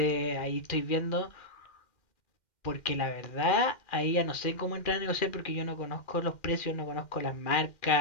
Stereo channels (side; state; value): right; late; 2.4 ms